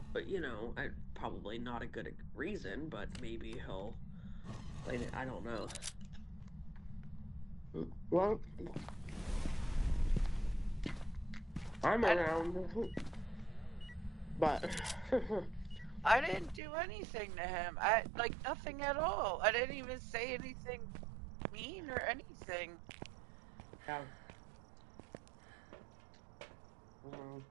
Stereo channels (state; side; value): drops out; left; at 16.6 s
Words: but probably not a good reason, but maybe he'll I don't know. Well, I'm I around. But I didn't do anything to him. Like nothing at all. I didn't even say anything mean or anything. yeah,